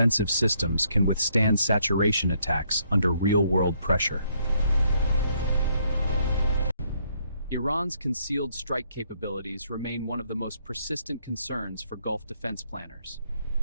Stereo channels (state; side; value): inverted; both; correlation -0.71